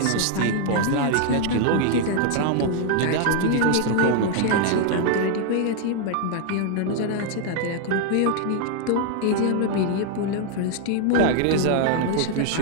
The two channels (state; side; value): different; both; correlation 0.00